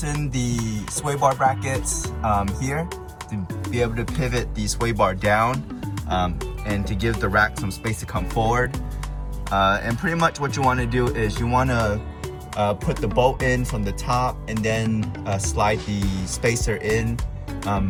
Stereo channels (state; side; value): identical; both; correlation 1.00